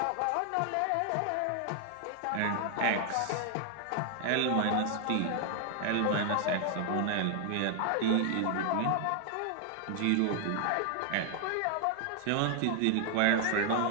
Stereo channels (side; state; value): both; different; correlation 0.00